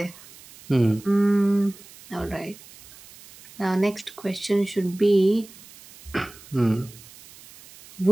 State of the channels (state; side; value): noise; right; hiss, 21 dB below the sound